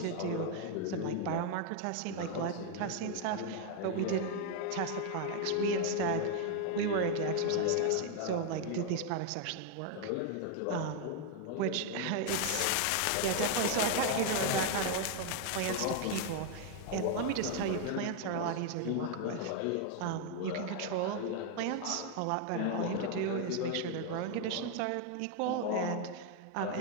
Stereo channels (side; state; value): both; different; correlation 0.01